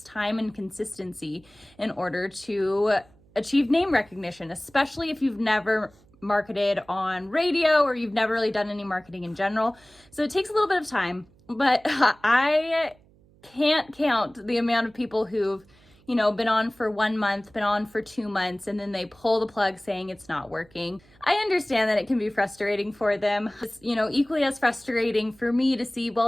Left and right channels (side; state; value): right; noise; hum, 29 dB below the sound